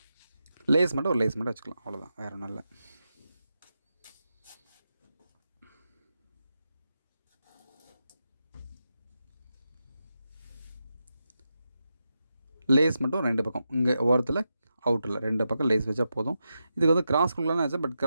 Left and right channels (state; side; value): inverted; both; correlation -0.87